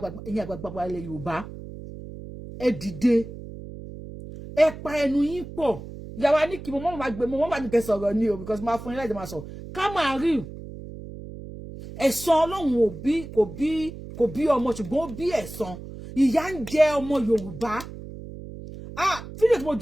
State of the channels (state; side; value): noise; right; hum, 12 dB below the sound